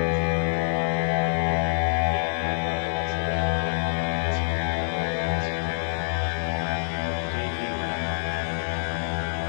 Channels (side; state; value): right; silent; digital silence